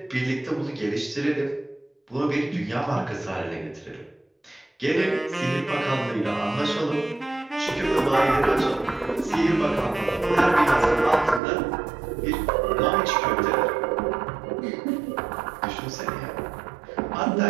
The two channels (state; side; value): drops out; left; at 11.4 s